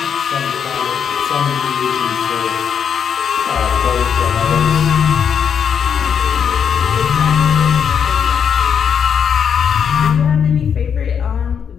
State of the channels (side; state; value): right; quieter; 7.5 dB